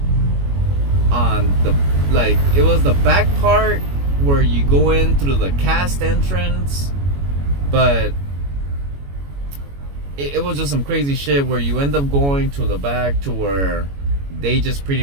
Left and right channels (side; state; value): left; late; 21 ms